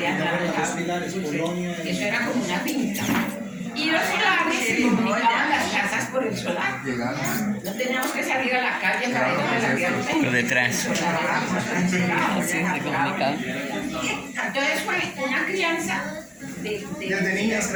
eso era como una finca. Y los solares comunicaban las casas por el solar. No teníamos que salir a la calle para ir a la tierra. Por detrás. Entonces fue una crianza Desde niñas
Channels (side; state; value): both; identical; correlation 1.00